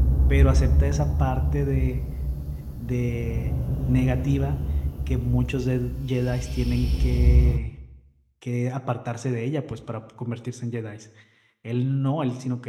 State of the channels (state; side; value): identical; both; correlation 1.00